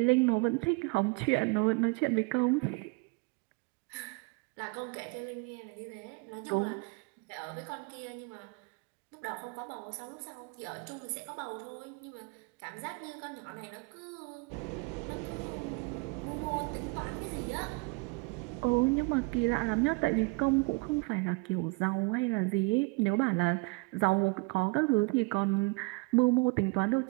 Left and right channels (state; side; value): quieter; left; 29.4 dB